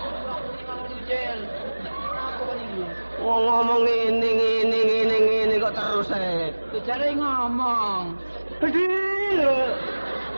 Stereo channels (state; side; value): inverted; both; correlation -1.00